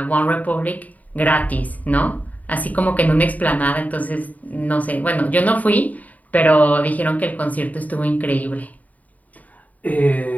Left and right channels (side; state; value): right; late; 0.074 ms